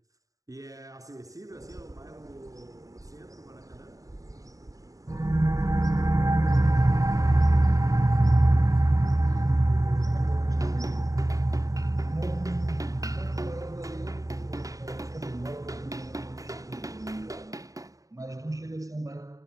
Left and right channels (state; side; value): late; left; 0.16 ms